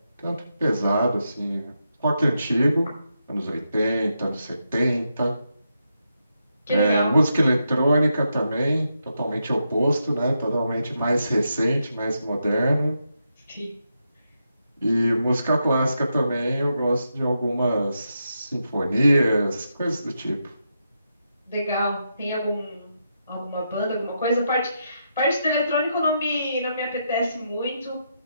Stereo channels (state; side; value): inverted; both; correlation -0.84